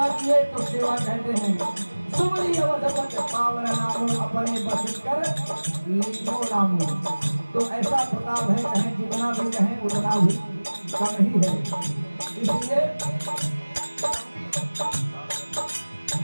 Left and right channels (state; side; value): inverted; both; correlation -1.00